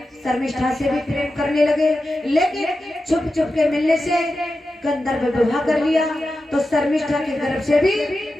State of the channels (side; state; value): both; normal; correlation 0.91